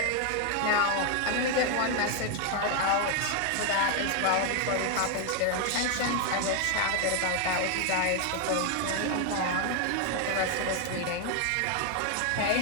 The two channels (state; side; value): different; both; correlation 0.01